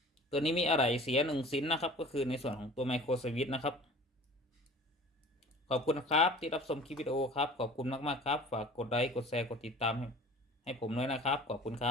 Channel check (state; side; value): normal; both; correlation 0.45